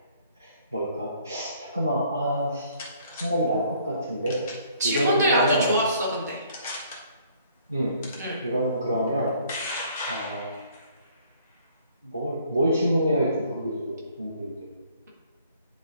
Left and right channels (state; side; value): inverted; both; correlation -0.59